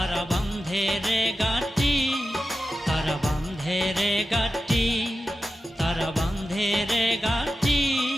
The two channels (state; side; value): normal; both; correlation 0.91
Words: বান্ধে রে গাটি, তারা বান্ধে রে গাটি, তারা বান্ধে রে গাটি,